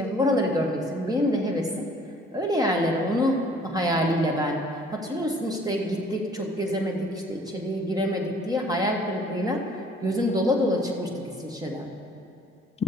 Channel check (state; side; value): normal; both; correlation 0.56